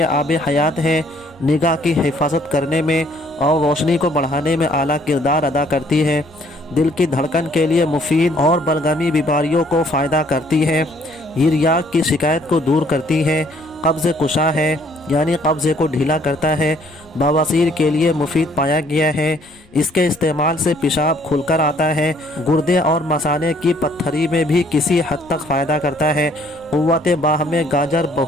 आब हयात है। निगाह की हिफाजत करने में और रोशनी को बढ़ाने में आला किरदार अदा करती है। दिल की धड़कन के लिए मुफीद और बलगमी बीमारियों को फ़ायदा करती है। यूरिया की शिकायत को दूर करती है। कब्ज़ कुशा है यानी कब्ज़े को ढीला करता है। बवासीर के लिए मुफीद पाया गया है। इसके इस्तेमाल से पेशाब खुलकर आता है। गुर्दे और मसाने की पत्थरी में भी किसी हद तक फ़ायदा करता है। क़ुव्वत बाह में गाजर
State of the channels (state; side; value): noise; left; rumble, 29 dB below the sound